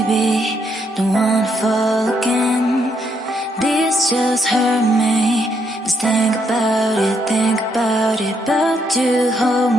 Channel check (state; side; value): normal; both; correlation 0.75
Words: don't wanna fall again. This just hurt me. Just think about it, but you hold